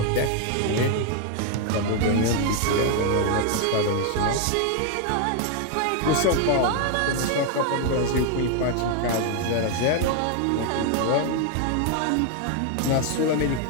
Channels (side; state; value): both; different; correlation 0.01